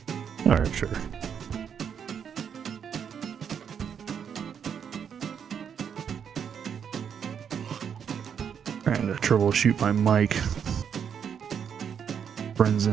Alright, sure. Trying to troubleshoot my mic. Friends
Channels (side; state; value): left; quieter; 7.7 dB